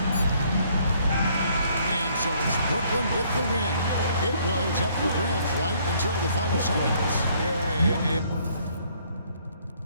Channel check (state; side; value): inverted; both; correlation -0.65